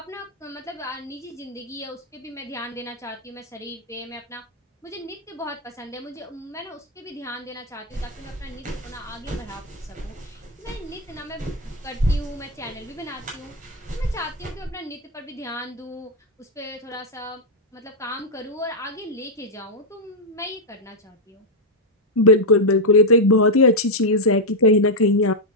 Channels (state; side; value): normal; both; correlation -0.01